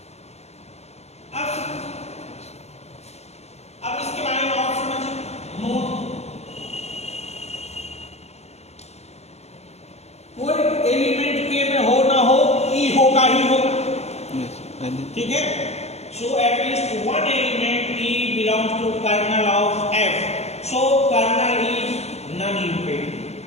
अब इसके बारे में और समझिए। नोट, कोई एलिमेंट के में हो ना हो, ई होगा ही होगा, यस पहले ठीक है। So at least one element e belongs to kernel of f, so kernel is non imperative.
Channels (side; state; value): right; late; 0.31 ms